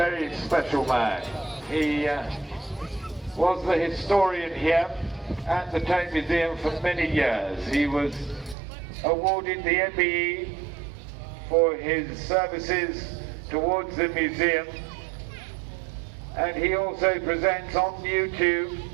special man. He was the historian here at the Tank Museum for many years. He was awarded the MBE for his services towards the museum, and he also presents on YouTube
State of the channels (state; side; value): drops out; left; at 8.6 s